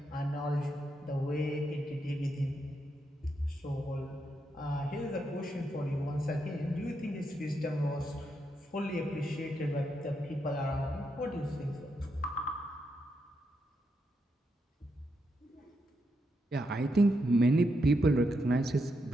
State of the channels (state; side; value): normal; both; correlation 0.82